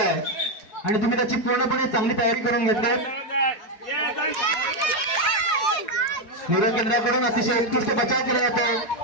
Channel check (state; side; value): late; right; 4.8 ms